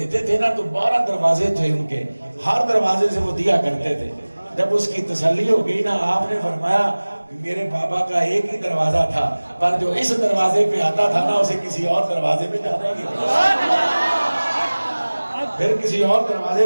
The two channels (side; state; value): both; inverted; correlation -1.00